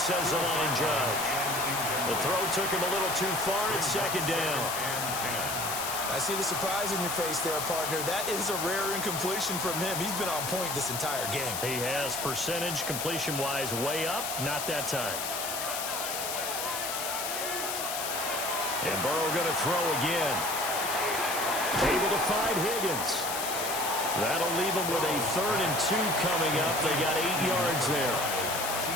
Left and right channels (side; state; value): left; noise; hiss, 3 dB below the sound